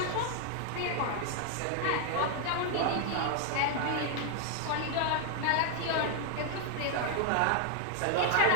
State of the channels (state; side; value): different; both; correlation 0.00